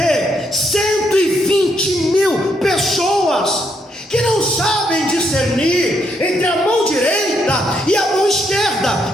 120.000 pessoas que não sabem discernir entre a mão direita e a mão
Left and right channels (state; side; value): normal; both; correlation 0.75